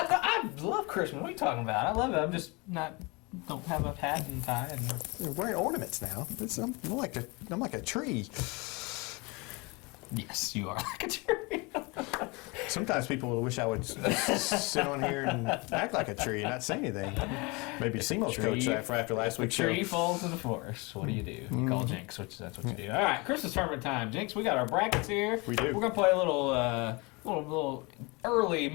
love Christmas. What are you talking about? I love it. I'm just don't have a hat and tie. And You're wearing ornaments now. I'm like a tree. yes, you are like a tree. Sometimes people wish I would sit on here and act like a tree and not say anything. Maybe Simo's coach after last week's show. Tree falls in the forest. What do? You call Jinx, which that's what you do. All right, Christmas tournament time. Jinx, we got our brackets here. We do. We're gonna play a little early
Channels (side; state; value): right; quieter; 27.4 dB